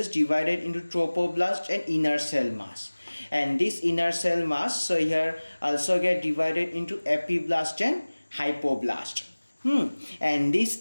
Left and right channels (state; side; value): inverted; both; correlation -1.00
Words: divided into trophoblast and inner cell mass. And this inner cell mass so here also get divided into epiblast and hypoblast. And this